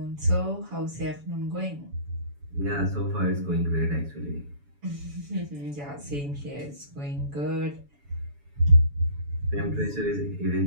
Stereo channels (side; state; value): left; late; 7.0 ms